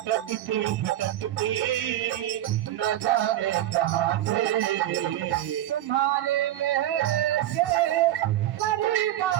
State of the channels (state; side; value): quieter; left; 13.3 dB